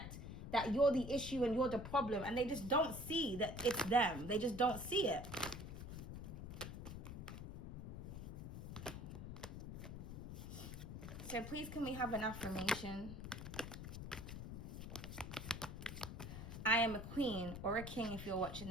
that you're the issue and you're the problem, and they just don't see that it's them. They just don't see it. So please, can we have an affirmation? I am a queen, or a king if you're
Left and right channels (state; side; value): noise; left; rumble, 8 dB below the sound